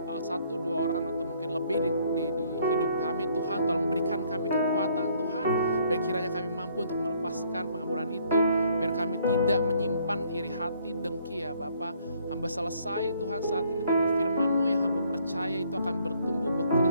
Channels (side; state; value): both; inverted; correlation -0.64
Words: orang atau mungkin lebih di hidup kami, Tuhan tolong berikan kami kekuatan Tuhan, biar kiranya kami mampu untuk melepaskan pengampunan itu, biar kami tidak menyimpan iri hati, dengki ya Bapa. Hamba selesai Tuhan saat ini, tapi firman-Mu yang hamba percaya itu akan bertumbuh,